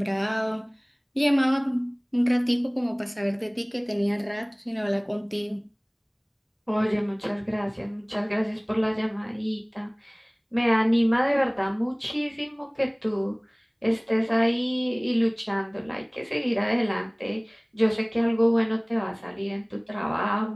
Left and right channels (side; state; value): both; identical; correlation 1.00